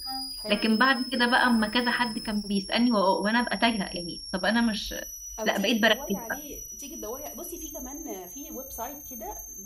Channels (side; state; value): both; identical; correlation 1.00